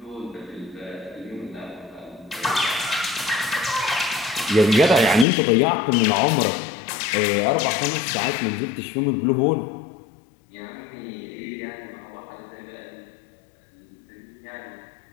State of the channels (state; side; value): drops out; right; at 5.2 s